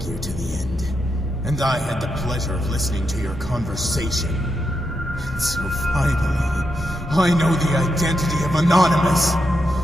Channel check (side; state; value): both; normal; correlation 0.84